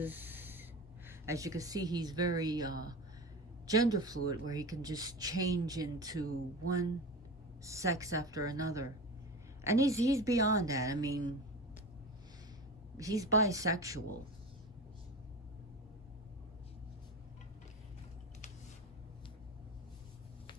as you can see, he's very gender fluid, where he can just change into one sex after another. And he's beyond that. I mean, he's bisexual.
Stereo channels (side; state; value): both; normal; correlation 0.29